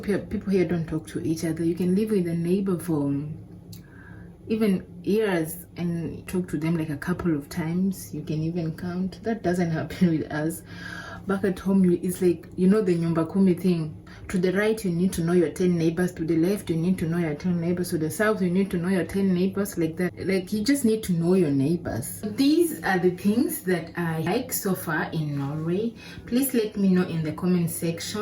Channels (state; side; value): identical; both; correlation 1.00